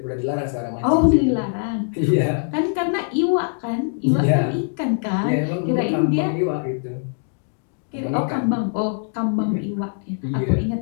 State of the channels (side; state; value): right; silent; digital silence